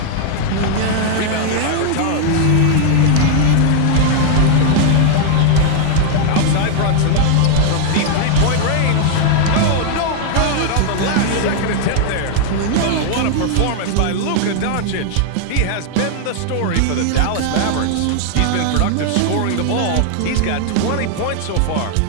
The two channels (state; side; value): different; both; correlation 0.00